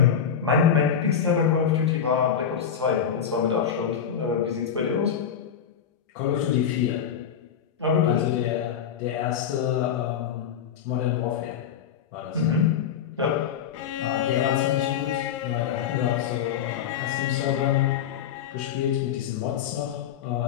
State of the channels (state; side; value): quieter; right; 8.2 dB